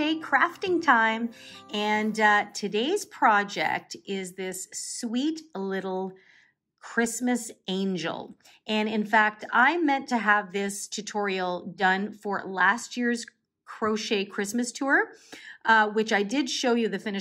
crafting time, and today's project is this sweet little Christmas angel. And in fact, I meant to have this tutorial done for last year's crochet Christmas tour, which I did show you the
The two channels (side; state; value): both; identical; correlation 1.00